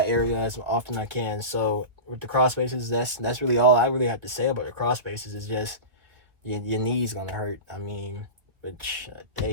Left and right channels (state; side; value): late; left; 2.1 ms